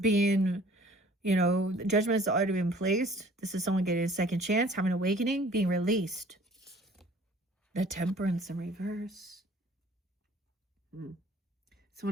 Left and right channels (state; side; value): normal; both; correlation 0.52